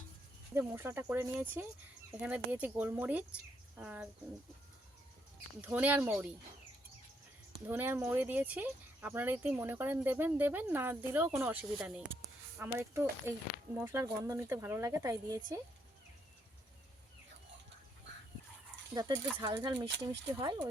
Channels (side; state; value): both; normal; correlation 0.75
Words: যে মশলাটা করে নিয়েছি, এখানে দিয়েছি গোলমরিচ আর ধনে আর মৌরি দিয়েছি। আপনারা যদি মনে করেন দেবেন দেবেন, না দিলেও কোনো অসুবিধা নেই। আমার একটু এই মশলার গন্ধ নিতে ভালো লাগে তাই দিয়েছি, যাতে একটু ঝাল ঝাল মিষ্টি মিষ্টি হয়,